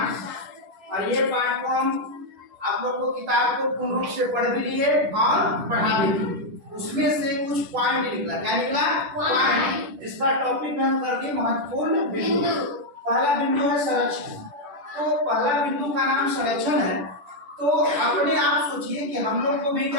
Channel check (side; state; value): left; late; 10 ms